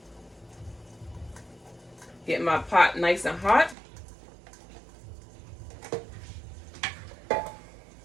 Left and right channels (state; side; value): drops out; left; at 3.8 s